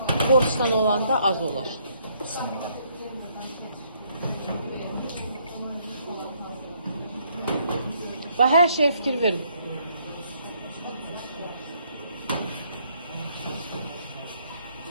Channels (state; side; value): inverted; both; correlation -0.69